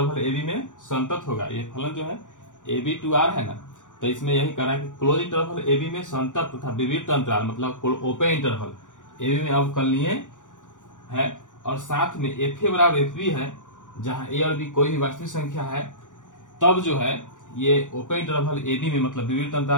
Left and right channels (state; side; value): late; right; 0.87 ms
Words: ए बी में संतत होगा। ये फलन जो है ए बी टू आर है ना, तो इसमें यही कह रहा है कि क्लोज इंटरवल ए बी में संतत तथा विवृत अंतराल मतलब ओपन इंटरवल ए बी में अवकलनीय है। और साथ में एफ ए बराबर एफ बी है, जहाँ ए और बी कोई भी वास्तविक संख्या है, तब जो है ये ओपन इंटरवल ए बी में मतलब विवृत